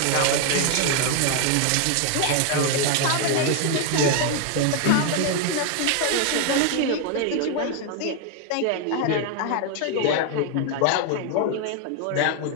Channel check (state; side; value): different; both; correlation 0.01